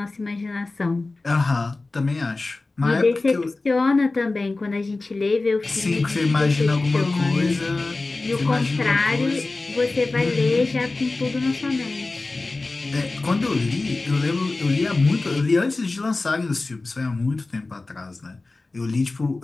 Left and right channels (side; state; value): right; quieter; 3.3 dB